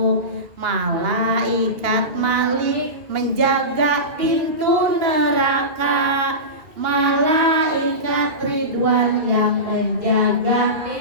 Malaikat Malik menjaga pintu neraka, Malaikat Ridwan yang menjaga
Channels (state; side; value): late; left; 2.8 ms